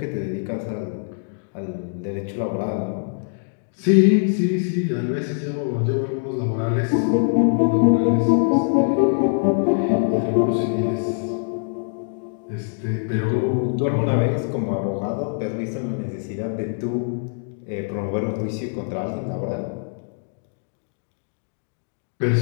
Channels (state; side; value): silent; right; digital silence